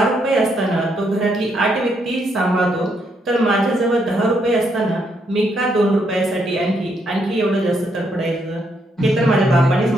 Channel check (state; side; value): normal; both; correlation 0.76